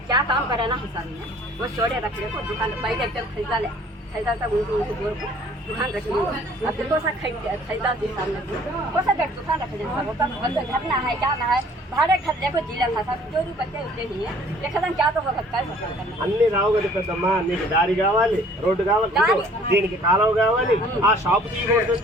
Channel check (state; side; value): normal; both; correlation 0.55